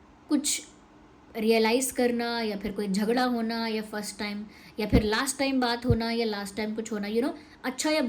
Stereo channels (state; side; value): identical; both; correlation 1.00